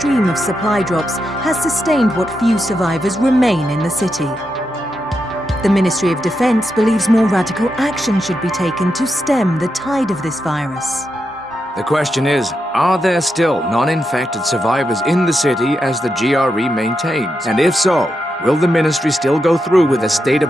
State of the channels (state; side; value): normal; both; correlation 0.85